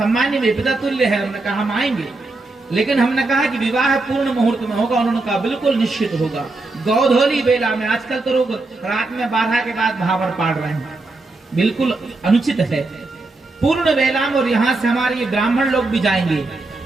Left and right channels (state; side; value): quieter; left; 3.2 dB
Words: विपिता तुल्य है। हमने कहा हम आएंगे, लेकिन हमने कहा कि विवाह पूर्ण मुहूर्त में होगा। उन्होंने कहा बिल्कुल निश्चित होगा। गौधोली बेला में, आजकल तो लोग रात में 12 के बाद भावर पाड़ रहे हैं, बिल्कुल अनुचित है। पूर्ण बेला में, और यहाँ से हमारे ये ब्राह्मण लोग भी जाएंगे